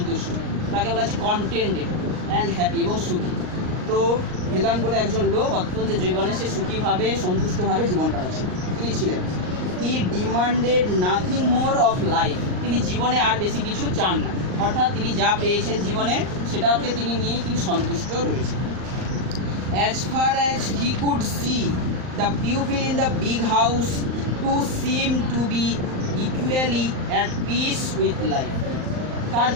তাকে বলা হচ্ছে কন্টেন্টেড অ্যান্ড হ্যাপি এবং সুখী। তো ভেলান বলে একজন লোক অত্যন্ত জীবনে সে সুখীভাবে সন্তুষ্টভাবে জীবন কাটাচ্ছিল তিনি ছিলেন। He demanded nothing more of life, তিনি জীবনে আর বেশি কিছু চান না, অর্থাৎ তিনি যা পেয়েছেন জীবনে সেটাকে তিনি নিয়েই তিনি সন্তুষ্ট রয়েছেন। As far as he could see the people in the big house to seem to be equally at peace with life. তার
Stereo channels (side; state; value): left; late; 38 ms